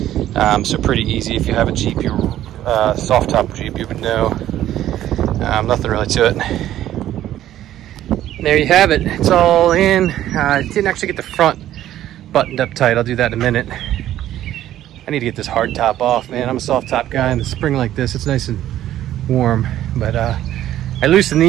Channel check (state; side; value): quieter; left; 12.7 dB